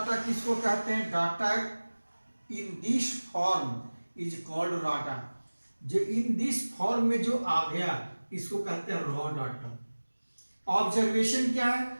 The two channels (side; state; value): both; inverted; correlation -1.00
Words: किसको कहते हैं? Data in this form is called data. जो इन दिस फॉर्म में जो आ गया इसको कहते हैं रॉ डाटा। ऑब्जर्वेशन क्या है?